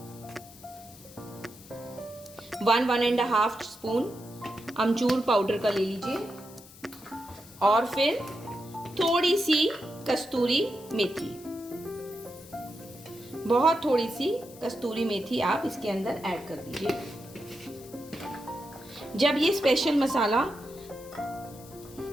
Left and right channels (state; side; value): noise; left; hiss, 20 dB below the sound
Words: 1-1.5 स्पून अमचूर पाउडर का ले लीजिए। और फिर थोड़ी सी कस्तूरी मेथी, बहुत थोड़ी सी कस्तूरी मेथी आप इसके अंदर ऐड कर दीजिए। जब ये स्पेशल मसाला